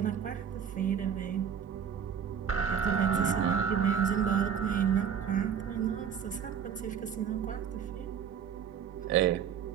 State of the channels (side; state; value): left; quieter; 7.8 dB